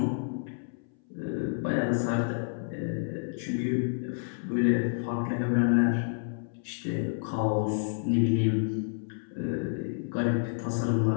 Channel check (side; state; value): right; silent; 58 dB below the other